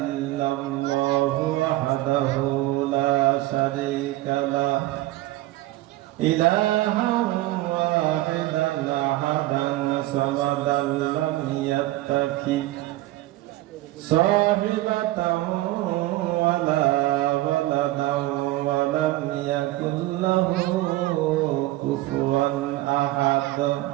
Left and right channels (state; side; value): quieter; left; 17.3 dB